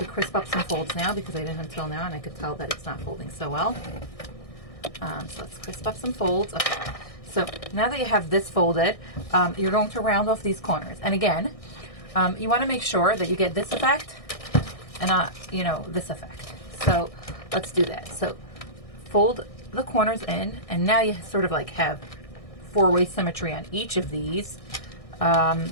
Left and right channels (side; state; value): right; late; 1.6 ms